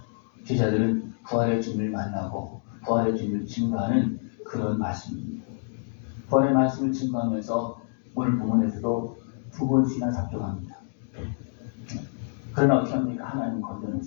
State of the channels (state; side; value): silent; right; digital silence